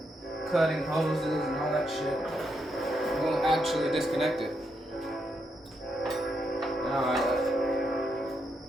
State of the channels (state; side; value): normal; both; correlation 0.80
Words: cutting hoses and all that shit, I'm going to actually disconnect it.